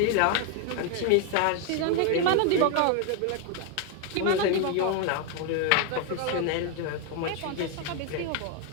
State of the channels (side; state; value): both; different; correlation 0.01